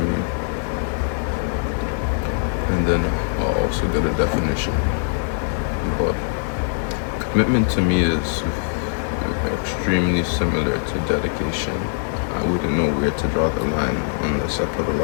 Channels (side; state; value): right; silent; digital silence